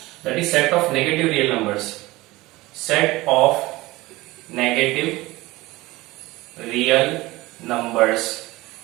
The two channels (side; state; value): left; quieter; 19.8 dB